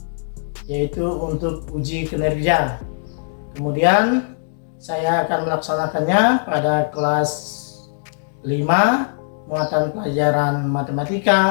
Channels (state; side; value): silent; right; digital silence